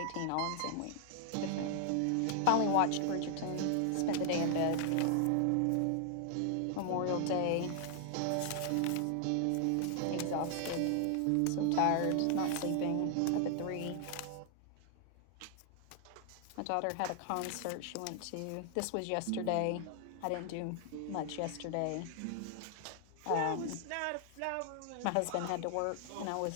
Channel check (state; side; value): different; both; correlation 0.00